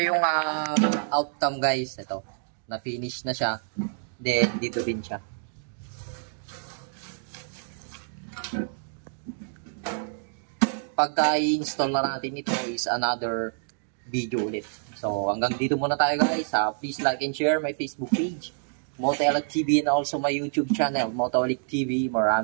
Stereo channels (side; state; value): left; silent; digital silence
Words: yung outcome guys. Ito, na-finish na siya. Then, dito din siya. Pagka i-install na natin ito is another video ulit. So, hanggang dito muna tayo guys. Please like and share my Facebook page, Motoelic TV, and also my YouTube channel, Motoelic TV.